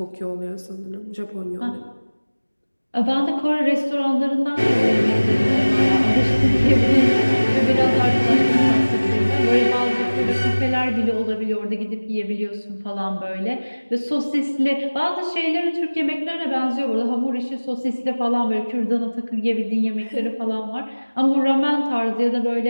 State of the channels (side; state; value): both; inverted; correlation -1.00